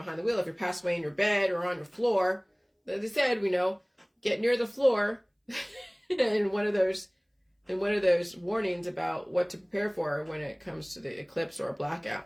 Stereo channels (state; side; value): identical; both; correlation 1.00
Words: the wheel. If you're passed away in your bed or on your floor, as I said, get near the floor and one of those warnings about what to prepare for when it comes to the eclipse or a